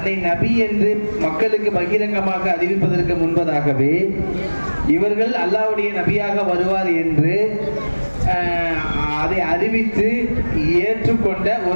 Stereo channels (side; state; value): both; inverted; correlation -1.00